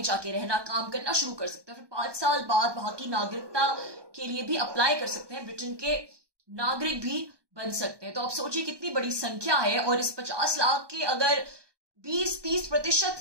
जाके रहना काम करना शुरू कर सकते हैं, फिर 5 साल बाद वहां की नागरिकता के लिए भी अप्लाई कर सकते हैं, ब्रिटेन के नागरिक भी बन सकते हैं। तो आप सोचिए कितनी बड़ी संख्या है। और इस 50 लाख के अगर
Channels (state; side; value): late; left; 1.2 ms